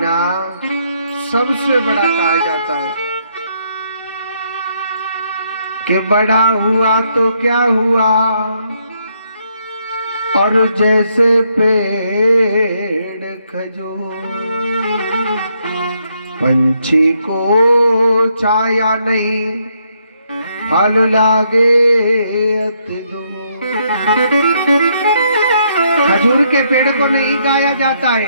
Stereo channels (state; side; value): inverted; both; correlation -0.74